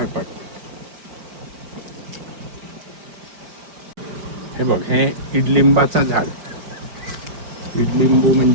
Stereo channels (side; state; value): left; late; 5.1 ms